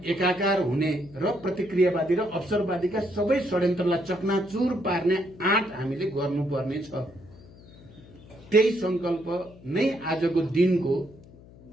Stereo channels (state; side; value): noise; left; hum, 22 dB below the sound